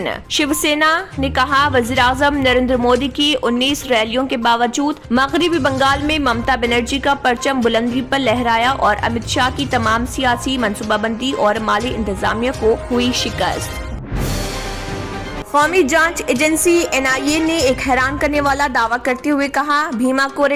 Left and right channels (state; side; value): identical; both; correlation 1.00